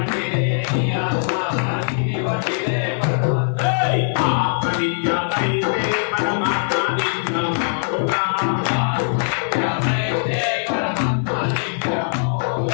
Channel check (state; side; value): silent; right; 65 dB below the other